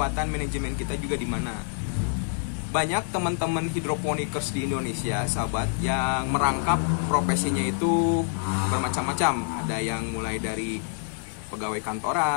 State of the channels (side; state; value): right; silent; 60 dB below the other